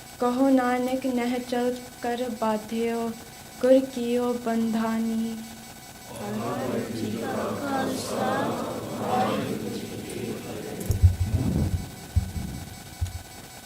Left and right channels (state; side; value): identical; both; correlation 1.00